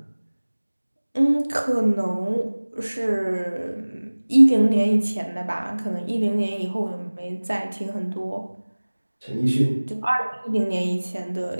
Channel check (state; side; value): inverted; both; correlation -1.00